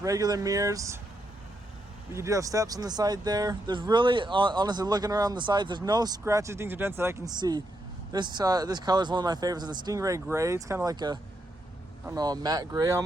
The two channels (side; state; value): both; normal; correlation 0.81